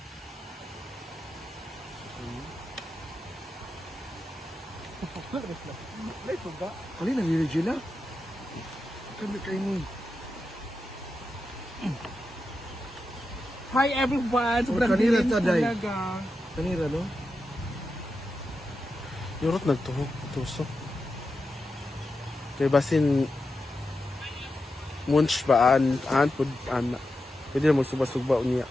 May tuga. Kali na ni Regina? Kami kayo ni. Hi everyone! Sobrang kanina dilim ta, Day. talaga. Kanira, no? Yurot nagtuhog, tusok. Kaya basin munch ba an pud ana. Pwede na magsuba-suba niya.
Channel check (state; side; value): normal; both; correlation 0.89